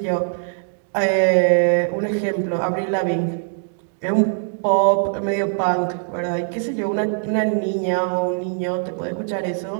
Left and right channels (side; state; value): left; silent; digital silence